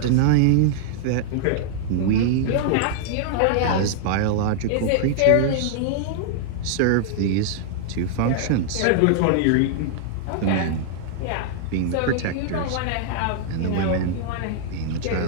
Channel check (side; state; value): both; different; correlation -0.01